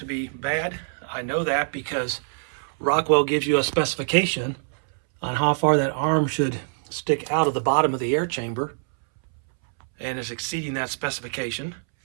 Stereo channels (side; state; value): left; silent; 62 dB below the other